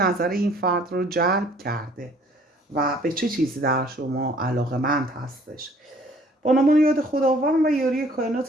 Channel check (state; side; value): normal; both; correlation 0.57